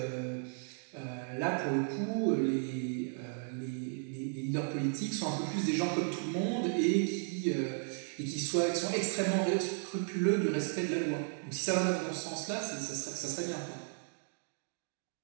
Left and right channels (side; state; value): left; silent; 55 dB below the other